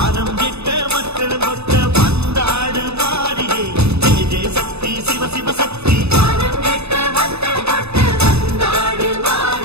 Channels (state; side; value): late; left; 0.79 ms